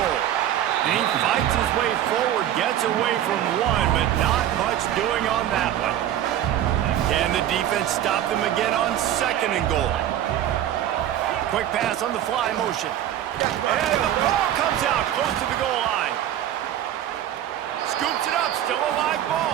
And he fights his way forward, gets away from one, but not much doing on that one. Can the defense stop them again on 2nd and goal? Quick pass on the fly motion. And the ball comes out close to the goal line. Scoops it up, still a live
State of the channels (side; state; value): left; quieter; 11.5 dB